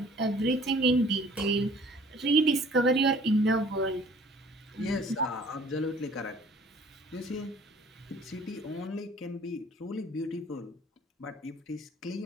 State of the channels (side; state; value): both; normal; correlation 0.53